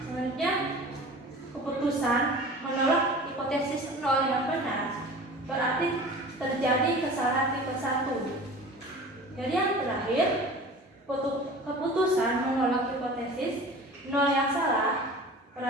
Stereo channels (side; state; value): both; normal; correlation 0.40